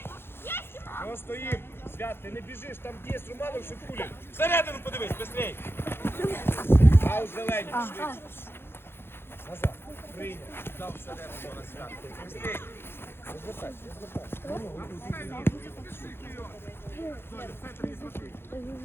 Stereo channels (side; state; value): right; late; 0.11 ms